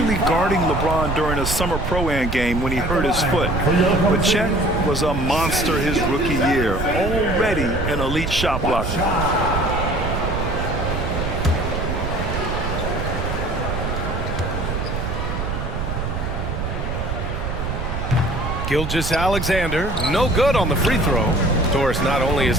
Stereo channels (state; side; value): noise; right; rumble, 3 dB below the sound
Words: guarding LeBron during a summer Pro-Am game when he hurt his foot. But Chet was a monster his rookie year, already an elite shot blocker. Gilgeous-Alexander, no good on the free throw. Of course, not only is